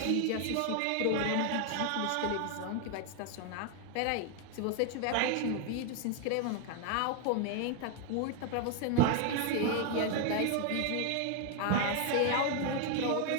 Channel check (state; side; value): different; both; correlation 0.00